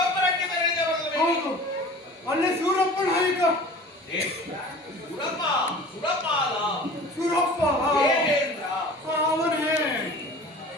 ಬೆರೆದವರಲ್ಲವೇ? ಹೌದು, ಅಲ್ಲಿ ಸೂರಪ್ಪ ನಾಯಕ. ಸುರಪ್ಪ, ಸುರಪಾಲ, ಸೂರಪ್ಪ ದೇವೇಂದ್ರ, ಅವನೇ.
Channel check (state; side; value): normal; both; correlation 0.42